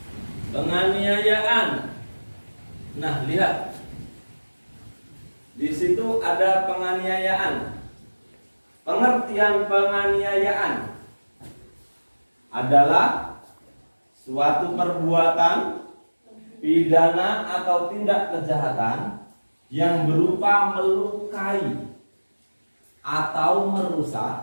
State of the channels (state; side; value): inverted; both; correlation -1.00